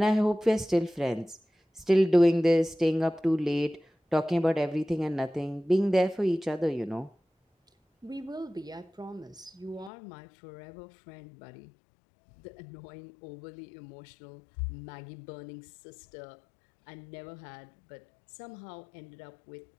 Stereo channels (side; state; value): right; drops out; at 9.9 s